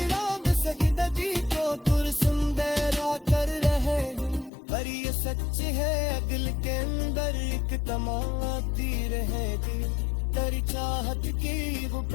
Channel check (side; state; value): right; drops out; at 4.5 s